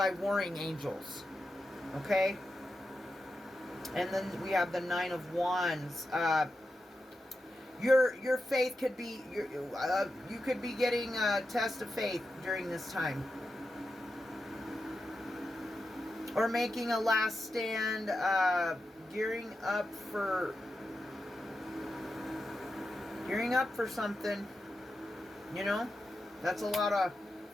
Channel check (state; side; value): normal; both; correlation 0.89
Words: warring angels. Okay? And then we have the Nine of Wands. Your faith could be, you could be getting a test of faith during this time. Or making a last stand, gearing up for something. You know? That's a lot of